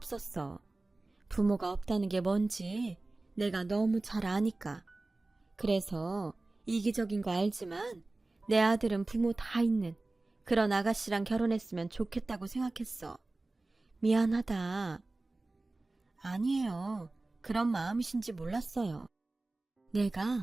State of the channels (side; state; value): left; quieter; 3.1 dB